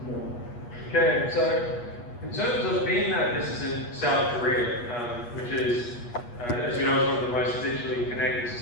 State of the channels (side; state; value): right; late; 8.3 ms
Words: Okay, so in terms of being that this is in South Korea, which is, as you know, is one of the most digitally connected